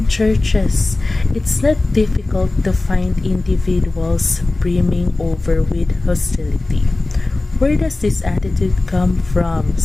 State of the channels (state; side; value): quieter; right; 3.0 dB